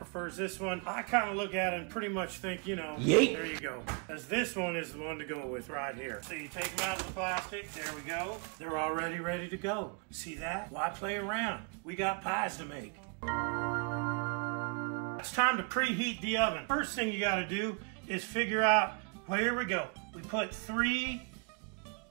this one. I kind of look at it and pretty much think, you know, Yeet. There you go. Because this one is the one to go with right here. So you take them out of the plastic. There we go. They're already ready to go. See that? Why play around? We got pies to make. It's time to preheat the oven. First thing you got to do is figure out, well, here we go. We put three,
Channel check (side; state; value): left; quieter; 34.9 dB